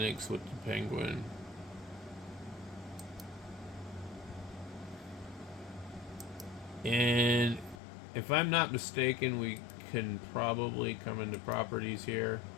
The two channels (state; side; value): drops out; right; at 7.8 s